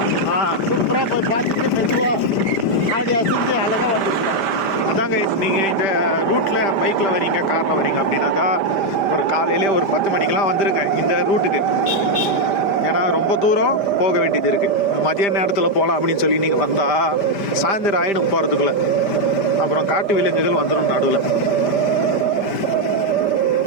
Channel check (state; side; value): late; right; 5.1 ms